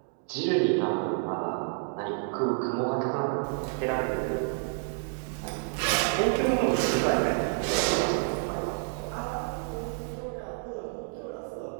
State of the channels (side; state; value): left; silent; 58 dB below the other